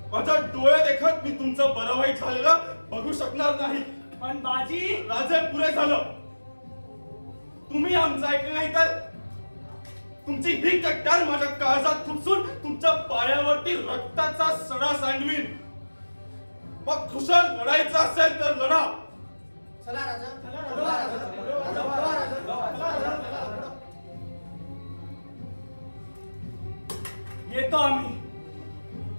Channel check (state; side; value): inverted; both; correlation -1.00